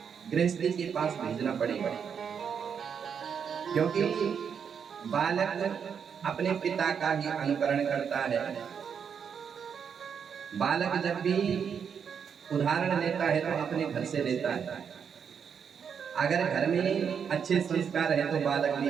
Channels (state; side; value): quieter; left; 7.1 dB